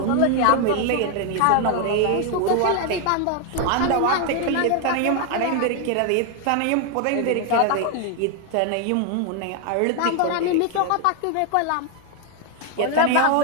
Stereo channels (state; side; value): different; both; correlation 0.01